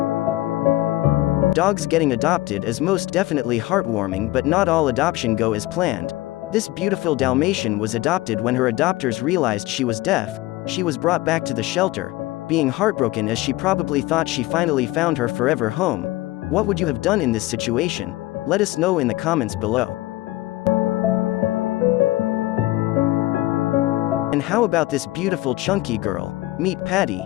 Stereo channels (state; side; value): quieter; right; 18.2 dB